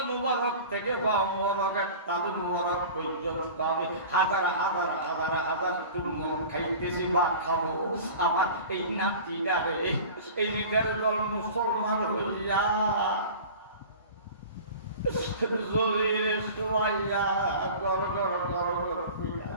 মুবারক থেকে পা মুবারক, তালু মুবারক পর্যন্ত আমি হাজার হাজার হাজার হাজার চুম্বন খাইতেছি বা খাবো। আমার এই নাতিটারে এই নিজের দল মুসলমান হইয়া জমিরে শোয়াইয়া গর গর গর গর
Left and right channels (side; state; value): both; inverted; correlation -0.38